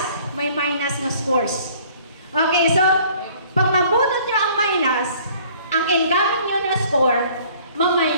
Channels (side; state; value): both; inverted; correlation -0.55